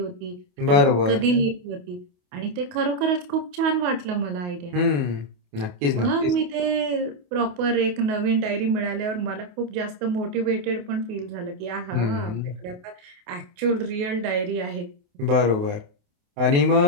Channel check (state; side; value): late; left; 28 ms